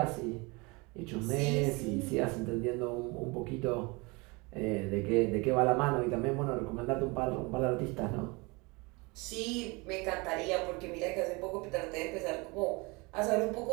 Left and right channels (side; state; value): left; quieter; 26.8 dB